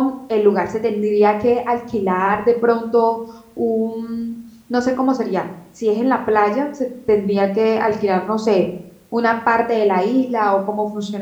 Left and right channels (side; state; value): both; identical; correlation 1.00